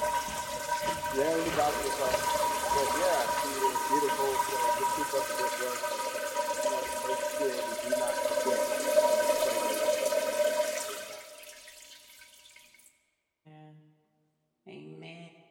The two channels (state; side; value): identical; both; correlation 1.00